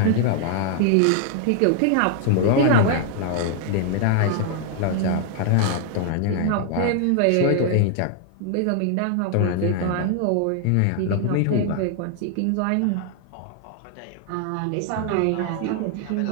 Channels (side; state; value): both; different; correlation 0.00